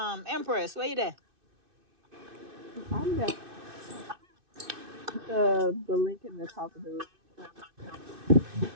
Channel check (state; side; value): late; left; 2.6 ms